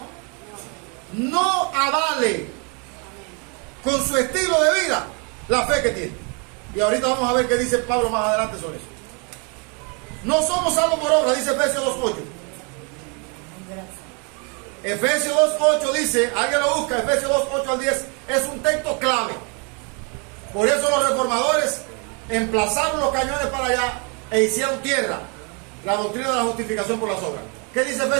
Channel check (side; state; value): left; quieter; 34.7 dB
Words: no avale con su estilo de vida la fe que tiene. Y ahorita vamos a ver qué dice Pablo más adelante sobre eso. No somos salvos por obra, dice Efesios 2.8. Efesios 2.8 dice, alguien lo busca, Efesios 2.8 al 10, es un texto clave. Por eso los reformadores emplazaron los cañones para allá e hicieron tierra la doctrina de la justificación por las obras. ¿Qué dice